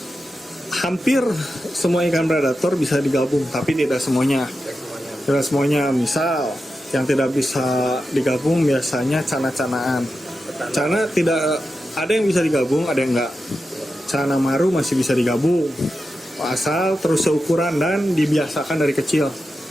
hampir semua ikan predator bisa digabung, tapi tidak semuanya. Tidak semuanya. Misal yang tidak bisa digabung biasanya cana-canaan. Cana tidak, ada yang bisa digabung, ada yang enggak. Cana maru masih bisa digabung asal terus seukuran dan dibiasakan dari kecil.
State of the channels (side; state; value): both; normal; correlation 0.90